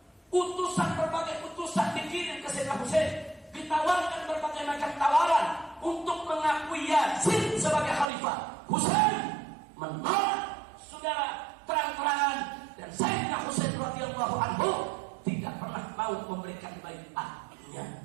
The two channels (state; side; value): drops out; left; at 8.1 s